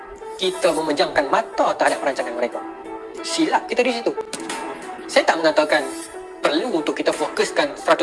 Kita memejamkan mata terhadap perancangan mereka. Silap kita di situ. Saya tak mengatakan perlu untuk kita fokuskan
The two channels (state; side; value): identical; both; correlation 1.00